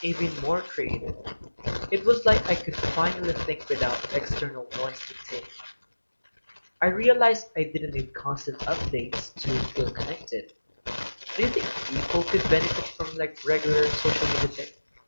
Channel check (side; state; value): both; inverted; correlation -1.00